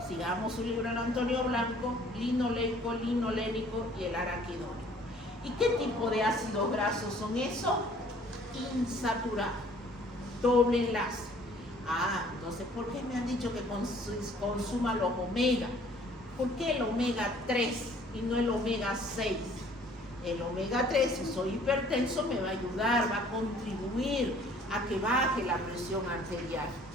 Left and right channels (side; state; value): both; normal; correlation 0.56